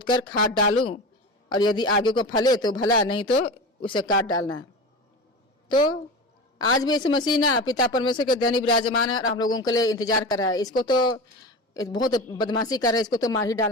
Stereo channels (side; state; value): both; normal; correlation 0.28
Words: कर खाद डालूं, और यदि आगे को फले तो भला, नहीं तो उसे काट डालना। तो आज भी यीशु मसीह ना पिता परमेश्वर के धनी विराजमान है और हम लोगों के लिए इंतजार कर रहा है। इसको तो बहुत बदमाशी कर रहा है, इसको तो मार ही